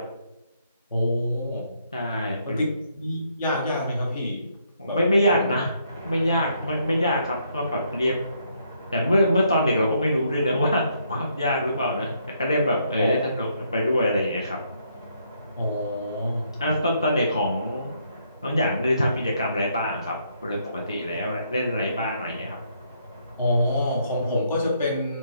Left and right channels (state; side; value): inverted; both; correlation -0.72